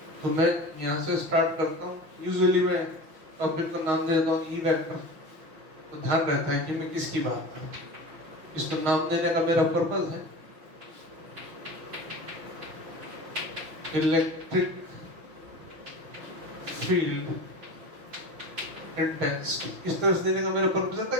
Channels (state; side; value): late; left; 6.0 ms